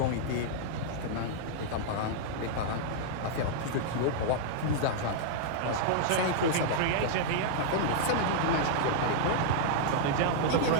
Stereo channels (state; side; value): different; both; correlation -0.01